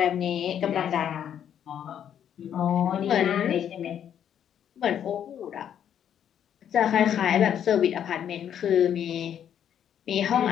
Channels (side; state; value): right; quieter; 9.4 dB